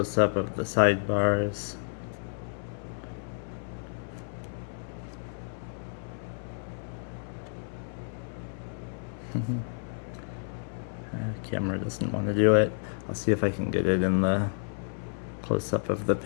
of the sidebars. Camera doesn't want to do it. I'll see if I can get it in the close-up of the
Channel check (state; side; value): silent; right; 58 dB below the other